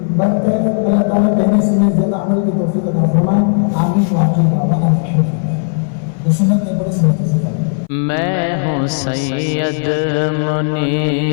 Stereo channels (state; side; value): silent; right; 62 dB below the other